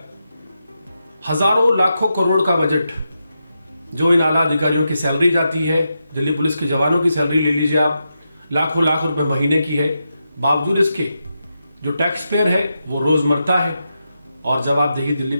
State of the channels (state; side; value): inverted; both; correlation -0.87